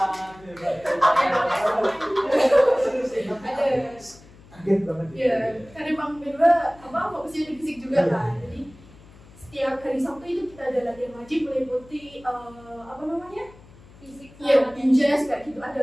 Kaget banget. Iya, karena emang Medwa fokusnya di fisik juga kan. Jadi setiap hari Sabtu itu kita ada latihan wajib meliputi fisik. Iya, binjas kayak gitu.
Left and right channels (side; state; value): left; noise; hum, 23 dB below the sound